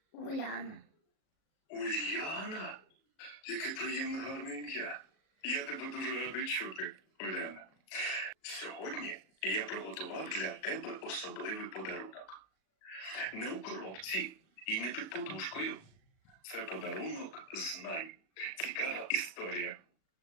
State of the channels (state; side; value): late; right; 37 ms